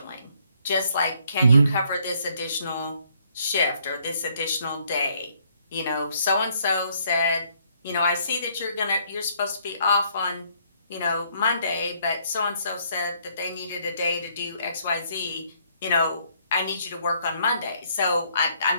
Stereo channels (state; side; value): inverted; both; correlation -0.68